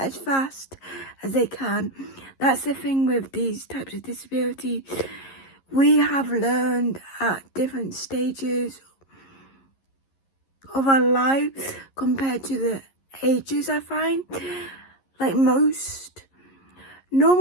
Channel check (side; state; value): right; late; 11 ms